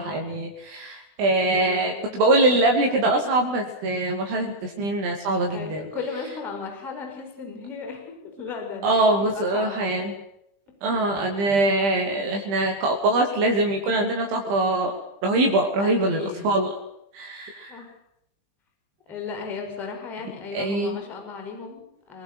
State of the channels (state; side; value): late; left; 20 ms